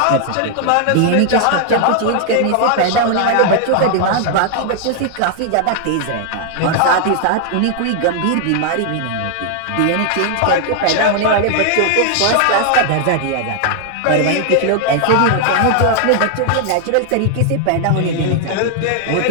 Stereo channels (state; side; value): different; both; correlation 0.00